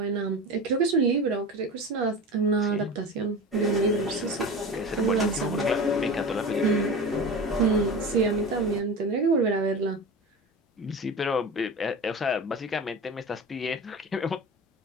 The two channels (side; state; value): both; normal; correlation 0.30